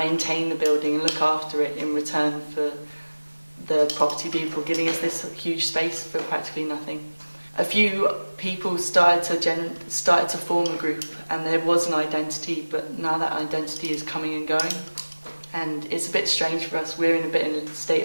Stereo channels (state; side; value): inverted; both; correlation -1.00